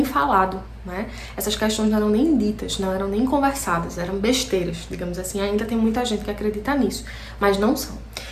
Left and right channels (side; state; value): both; identical; correlation 1.00